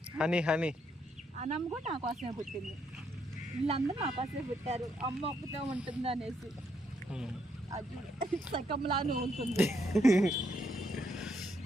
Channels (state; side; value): normal; both; correlation 0.75